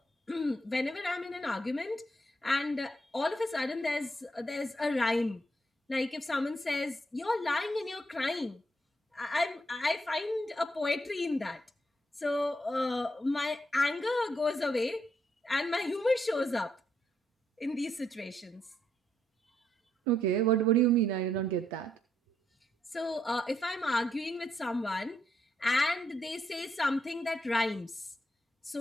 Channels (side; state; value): both; normal; correlation 0.77